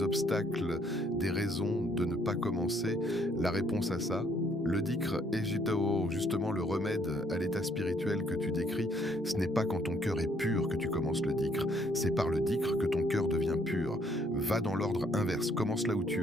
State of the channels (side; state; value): both; normal; correlation 0.66